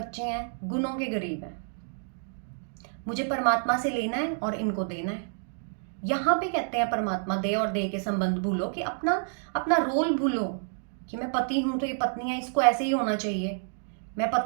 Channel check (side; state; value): left; silent; digital silence